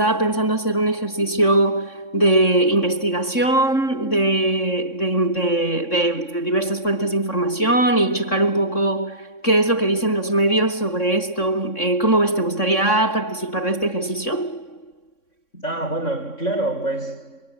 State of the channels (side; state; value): right; late; 3.6 ms